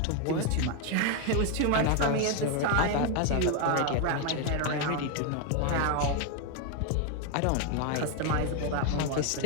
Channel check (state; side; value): different; both; correlation 0.01